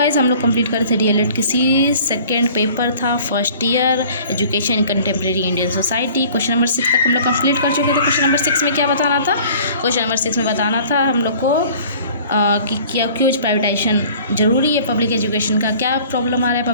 Guys हम लोग complete कर थे डीएलएड किसी सेकेंड पेपर था first year education in contemporary Indian society. Question number 6 तक हम लोग कंप्लीट कर चुके थे। क्वेश्चन नंबर 6 में क्या बताना था? क्वेश्चन नंबर 6 में बताना था हम लोग को कि क्या क्यों प्राइवेटाइजेशन ज़रूरी है पब्लिक एजुकेशन का, क्या प्रॉब्लम आ रहा है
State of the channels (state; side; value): inverted; both; correlation -0.49